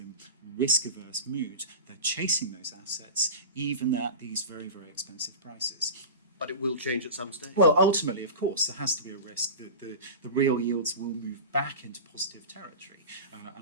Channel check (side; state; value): both; inverted; correlation -0.30